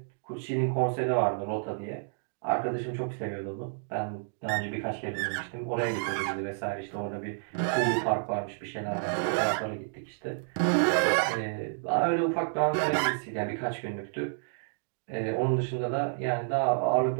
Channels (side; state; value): left; silent; digital silence